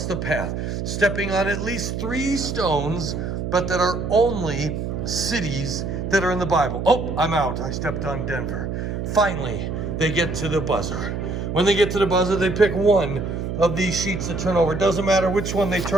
the path, stepping on at least 3 stones, but that are only cities that are in the Bible. Oh, I'm out. I stepped on Denver. Finally, they get to the buzzer. When they get to the buzzer, they pick one of these sheets to turn over. It doesn't matter which one they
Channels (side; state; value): right; noise; hum, 3 dB below the sound